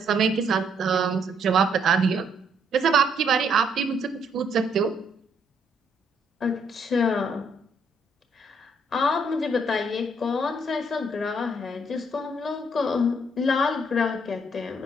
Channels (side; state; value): both; normal; correlation 0.70